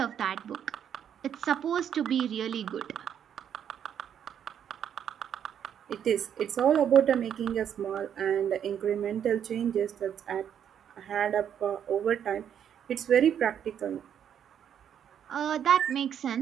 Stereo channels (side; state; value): left; quieter; 9.0 dB